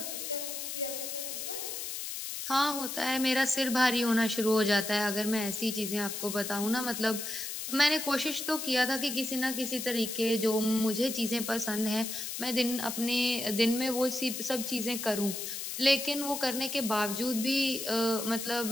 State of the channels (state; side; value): noise; left; hiss, 5 dB below the sound